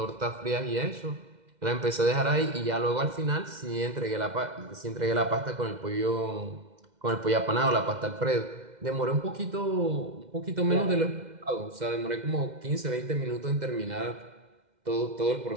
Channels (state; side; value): late; left; 2.1 ms